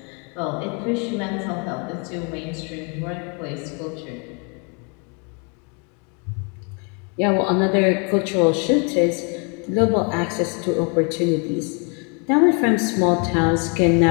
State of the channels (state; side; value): quieter; right; 35.8 dB